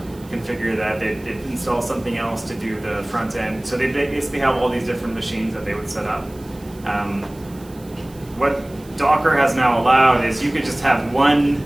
configure that, they'd install something else to do the front end. So they basically have all these different machines that they would set up. What Docker has now allowed is you could just have one,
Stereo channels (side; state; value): right; noise; hiss, 24 dB below the sound